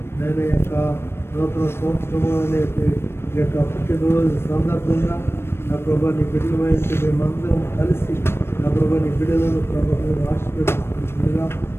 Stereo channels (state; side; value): late; right; 0.12 ms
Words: నేను యొక్క నూతన సంవత్సరంలో ఈ యొక్క పుట్టినరోజు సందర్భంగా నా ప్రభాని బిడ్డల వయసు మేమందరం కలిసి నా ప్రభాని బిడ్డలను ప్రభావం ఆశీర్వదిస్తున్నా